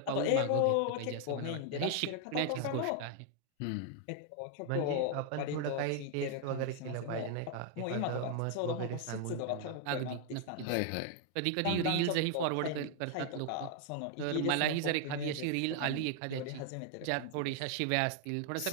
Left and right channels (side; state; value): both; different; correlation 0.00